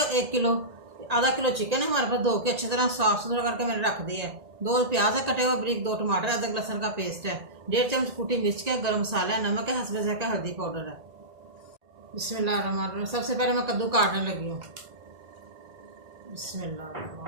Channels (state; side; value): late; left; 1.8 ms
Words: 1 किलो, आधा किलो चिकन है हमारे पास, धो के अच्छी तरह साफ सुथरा करके मैंने रख दिया है। 2 प्याज है कटे हुए बारीक, 2 टमाटर, अदरक लहसुन का पेस्ट है, 1.5 चम्मच कुटी मिर्च का, गरम मसाला है, नमक है, हस्बे ज़ायक़ा हल्दी पाउडर है। बिस्मिल्लाहिर्रहमानिर्रहीम। सबसे पहले मैं कद्दू काटने लगी हूँ।